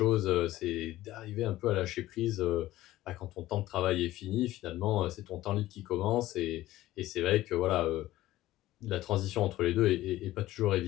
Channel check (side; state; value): right; quieter; 15.8 dB